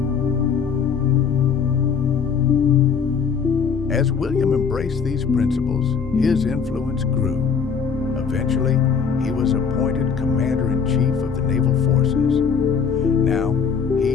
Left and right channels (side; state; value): right; quieter; 6.3 dB